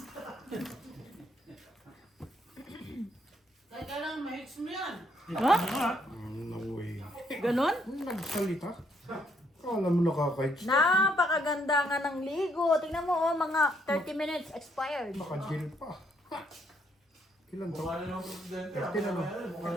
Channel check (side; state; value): both; normal; correlation 0.71